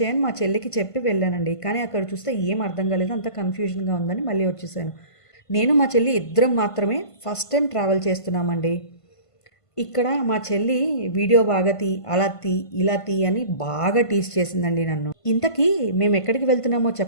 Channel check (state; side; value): late; right; 1.5 ms